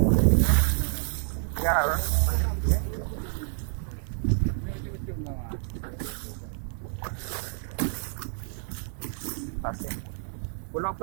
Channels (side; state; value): left; silent; 59 dB below the other